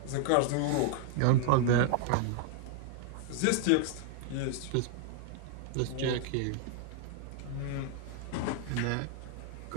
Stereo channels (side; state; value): both; different; correlation 0.00